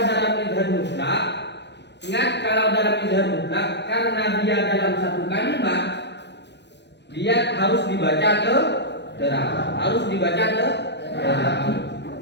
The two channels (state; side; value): late; right; 0.50 ms